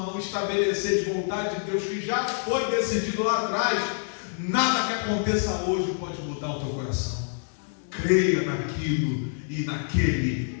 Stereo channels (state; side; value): silent; right; 60 dB below the other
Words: estabelecer de vontade de Deus que já foi decidido lá atrás, nada que aconteça hoje pode mudar o teu coração. Creia naquilo e naquele